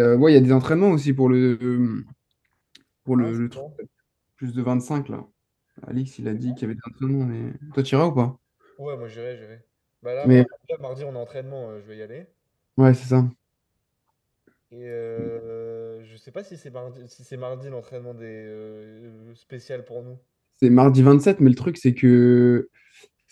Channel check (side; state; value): both; identical; correlation 1.00